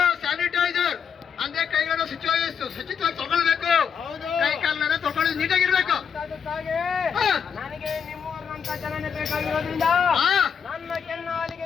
ಸ್ಯಾನಿಟೈಸರ್ ಅಂದ್ರೆ ಕೈಗಳನ್ನು ಶುಚಿತ್ವವಾಗಿ ತೊಗೊಳ್ಬೇಕು ಹೌದು ಕೈ ಕಾಲನ್ನ ತೊಗೊಳ್ಳೋದು ನೀಟಾಗಿರ್ಬೇಕು ಅದಕ್ಕಾಗಿ ನನಗೆ ನಿಮ್ಮೂರಿನಂತ ಜನನೇ ಬೇಕಾಗಿರೋದ್ರಿಂದ ನನ್ನ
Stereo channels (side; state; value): right; quieter; 7.0 dB